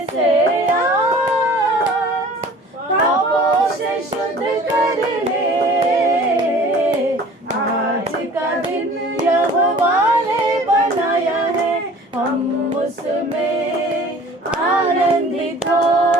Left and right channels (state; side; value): normal; both; correlation 0.46